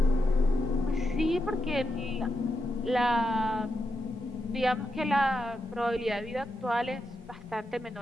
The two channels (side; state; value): both; normal; correlation 0.86